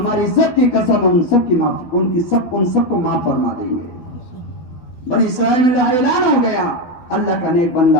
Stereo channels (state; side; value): late; right; 12 ms